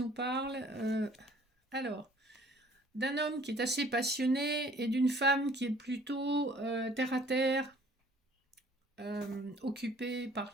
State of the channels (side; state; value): both; normal; correlation 0.55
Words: parle d'un homme qui est assez passionné et d'une femme qui est plutôt terre à terre, occupée par